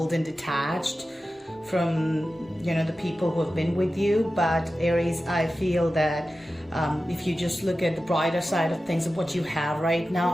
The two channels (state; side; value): normal; both; correlation 0.94